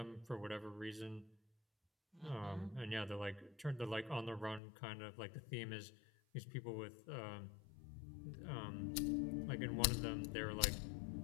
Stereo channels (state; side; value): drops out; right; at 4.6 s